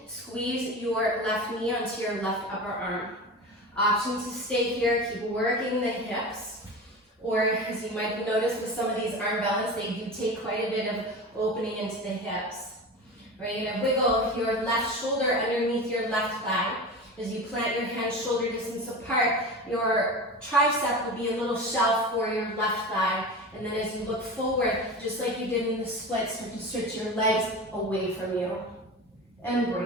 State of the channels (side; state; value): both; normal; correlation 0.30